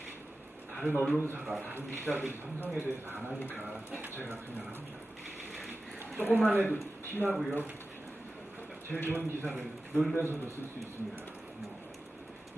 다른 언론사가 다른 기자들이 삼성에 대해서 안 하니까 제가 그냥 합니다. 조금만 해도 티나고요. 제일 좋은 기사를 놀면서도 쓸 수 있습니다.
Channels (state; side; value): normal; both; correlation 0.94